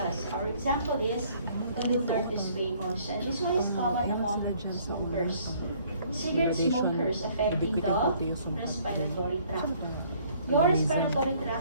Our example is columnar to squamous. And this one is common among smokers. Cigarette smokers affecting the respiratory tract. Your respiratory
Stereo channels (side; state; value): both; inverted; correlation -0.60